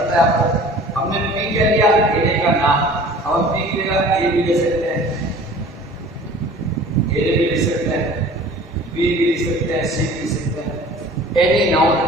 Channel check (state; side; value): normal; both; correlation 0.45